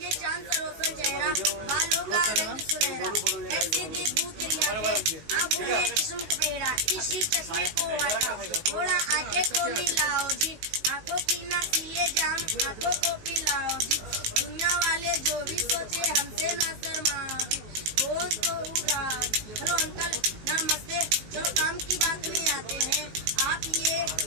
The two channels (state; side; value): late; left; 19 ms